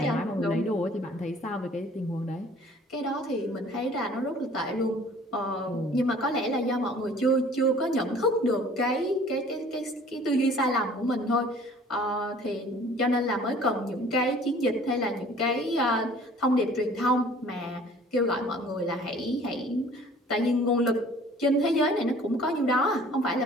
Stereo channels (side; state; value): both; normal; correlation 0.51